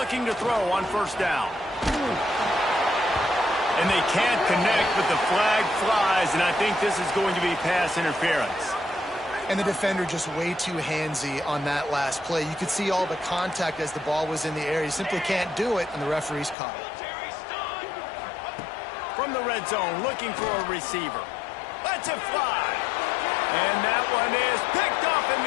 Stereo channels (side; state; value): right; drops out; at 16.6 s